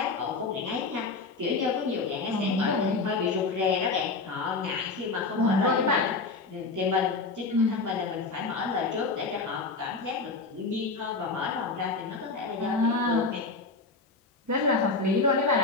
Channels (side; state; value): right; quieter; 3.9 dB